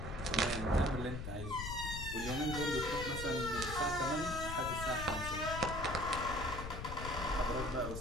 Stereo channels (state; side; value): noise; left; rumble, 7 dB below the sound